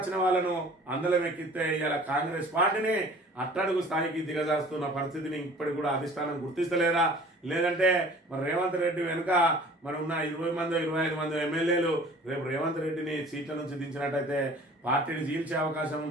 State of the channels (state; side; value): normal; both; correlation 0.48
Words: వాళ్ళను అందలం ఎక్కిస్తే ఇలా కాంగ్రెస్ పార్టీని అట్టడుగు స్థాయికి దిగజారుస్తున్న పరిస్థితిని ఇప్పటికి కూడా అధిష్టానం గుర్తిస్తలేదా? లేదంటే మరి రేవంత్ రెడ్డి వెనుక మరి ఉన్న 20 మంది 25 మంది ఎమ్మెల్యేలు రేపు రేవంత్ రెడ్డిని సీట్ల నుంచి దించినట్టయితే పార్టీని చీల్చే అవకాశం